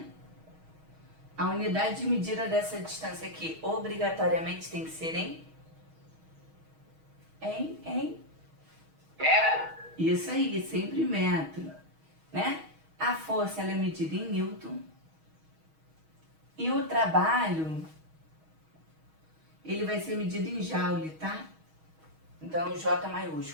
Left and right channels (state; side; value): late; left; 6.3 ms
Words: A unidade de medida dessa distância aqui obrigatoriamente tem que ser em? Isso aí, sempre metro, né? A força ela é medida em Newton e o trabalho ele vai ser medido em Joule, tá? Então J